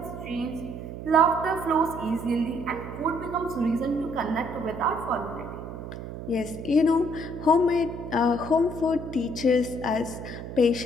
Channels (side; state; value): right; noise; hum, 9 dB below the sound